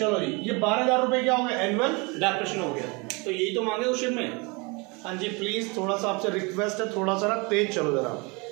जी, ये 12,000 रुपए क्या हो गया, एनुअल डेप्रिसिएशन हो गया, तो यही तो मांगे क्वेश्चन में। हाँ जी प्लीज थोड़ा सा आपसे रिक्वेस्ट है, थोड़ा सा ना तेज चलो जरा,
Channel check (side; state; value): left; quieter; 28.6 dB